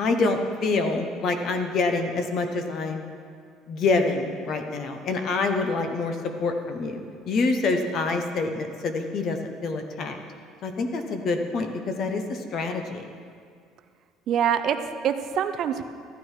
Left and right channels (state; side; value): normal; both; correlation 0.59